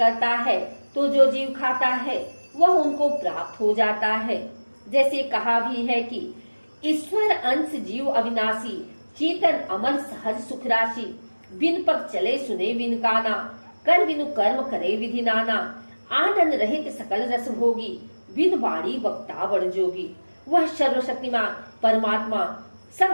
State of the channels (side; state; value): both; inverted; correlation -1.00